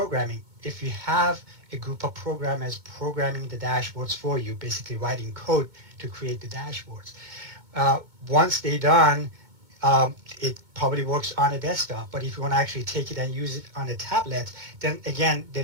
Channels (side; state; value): left; late; 2.2 ms